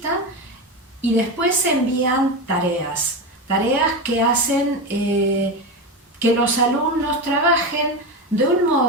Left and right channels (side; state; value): both; normal; correlation 0.18